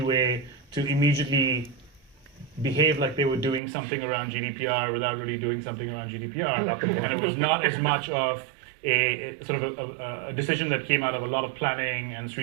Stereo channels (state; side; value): drops out; left; at 3.6 s